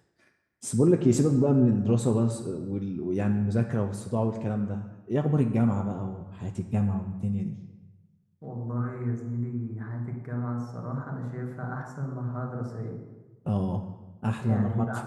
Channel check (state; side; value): identical; both; correlation 1.00